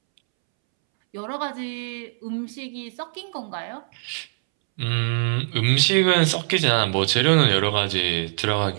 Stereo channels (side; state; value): left; silent; 64 dB below the other